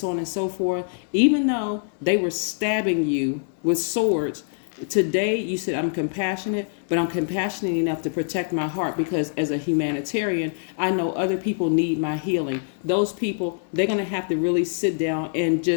on and so forth. Even though they were stabbing you with swords, today you said, I'm compassionate, but I'm compassionate enough to protect my heart, because as a humanitarian, I know other people need my healing. Those people, they're going to have to really sit down and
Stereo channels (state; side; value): silent; right; digital silence